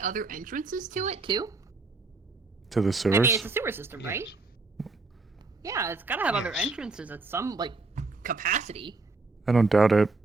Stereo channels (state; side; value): quieter; left; 3.7 dB